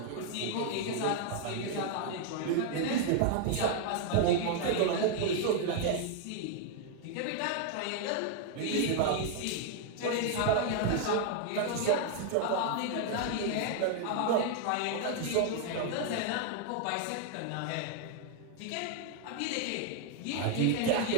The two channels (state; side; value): different; both; correlation 0.00